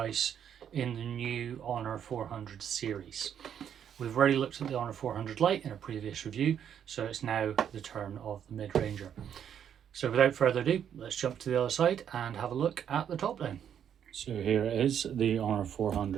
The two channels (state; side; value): quieter; left; 8.9 dB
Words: in the new Honor 400 series. We've already looked at the Honor 400 Lite in a previous review, so it's now the turn of the mid-ranger. So without further ado, let's jump to the other side and have a look at the top down. So here is the Honor